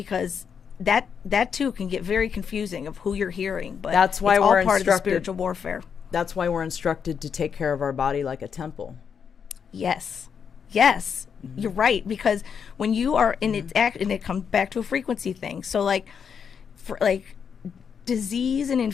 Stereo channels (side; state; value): right; quieter; 6.9 dB